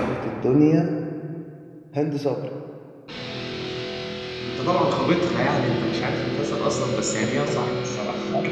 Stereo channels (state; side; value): identical; both; correlation 1.00